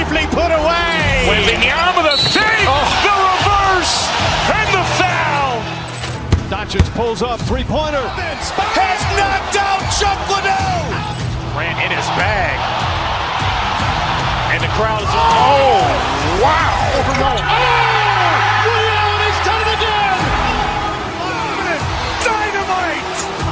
put away. Waving the arm of the save, the reverse, and the foul. Doncic pulls up, three-pointer. Has knocked out Chuck Liddell. Grant in his bag. And the crowd is, oh, wow. Oh! Reality's done it again! Dynamite!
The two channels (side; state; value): both; identical; correlation 1.00